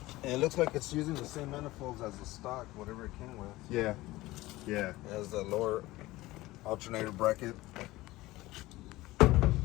it looks like it's using the same manifolds as the stock, whatever it came with. Yeah, yeah. It has the lower alternator bracket.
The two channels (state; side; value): quieter; right; 18.5 dB